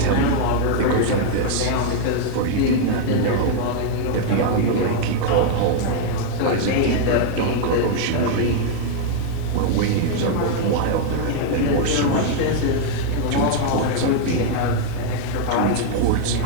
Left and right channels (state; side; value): different; both; correlation 0.00